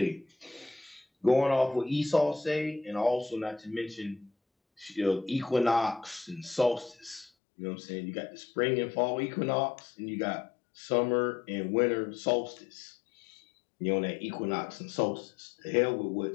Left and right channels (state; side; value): drops out; right; at 7.3 s